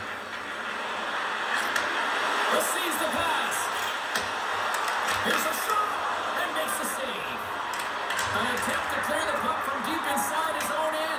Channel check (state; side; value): identical; both; correlation 1.00